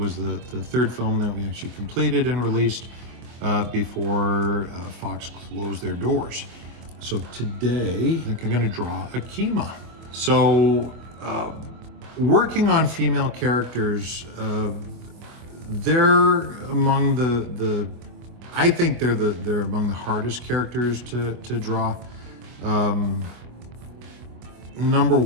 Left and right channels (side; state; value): left; late; 25 ms